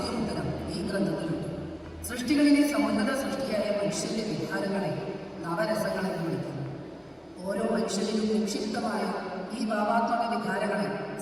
ഉത്തരം ഈ ഗ്രന്ഥത്തിലുണ്ട്. സൃഷ്ടികളിലെ സമുന്നത സൃഷ്ടിയായ മനുഷ്യന്റെ വികാരങ്ങളെ നവരസങ്ങളെ വിളിക്കുന്നു. ഓരോ മനുഷ്യനിലും നിക്ഷിപ്തമായ ഈ ഭാവാത്മക വികാരങ്ങളെ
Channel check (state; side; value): identical; both; correlation 1.00